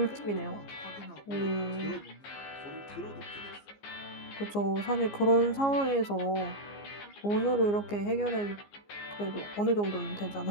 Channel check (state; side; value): late; right; 15 ms